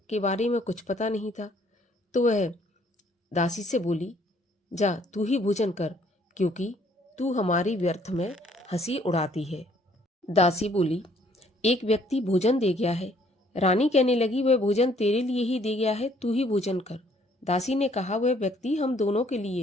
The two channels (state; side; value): normal; both; correlation 0.63